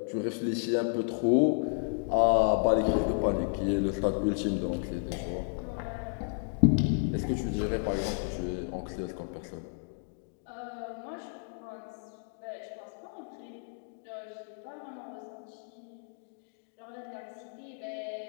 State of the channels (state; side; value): silent; right; digital silence